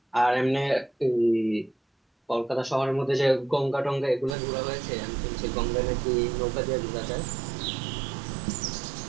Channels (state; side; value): drops out; left; at 4.4 s